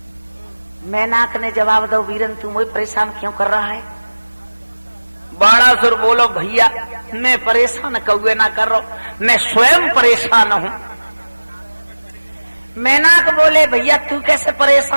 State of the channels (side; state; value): both; inverted; correlation -1.00